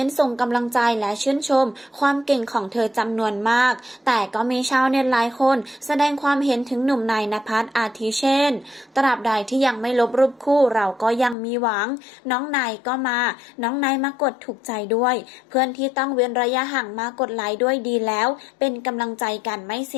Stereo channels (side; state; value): right; drops out; at 11.4 s